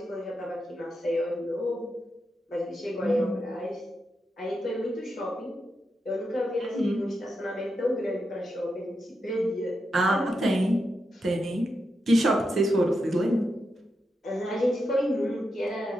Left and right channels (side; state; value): both; normal; correlation 0.86